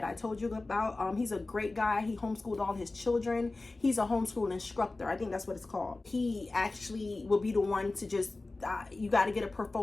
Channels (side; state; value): right; quieter; 3.2 dB